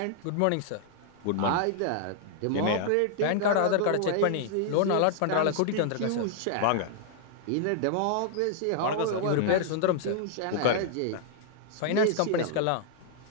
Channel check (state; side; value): different; both; correlation -0.01